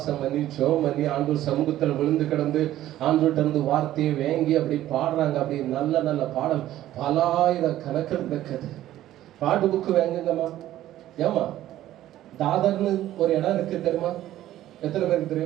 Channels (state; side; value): quieter; left; 13.6 dB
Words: பண்ணி ஜோம் பண்ணி ஆண்டவர் சமூகத்தில் விழுந்து கிடந்து ஆண்டவர்கிட்ட இருந்து வார்த்தையை வேங்கி அப்படி பாடுறாங்க. அப்படி நல்ல நல்ல பாடல் பலாயிரம் கணக்கில் இருக்குது. பாட்டு புக்கு வேங்குங்கம்மா. ஏமா தாதர்னு ஒரு இடம் இருக்கு தெரியுமா? எத்தனை பேருக்கு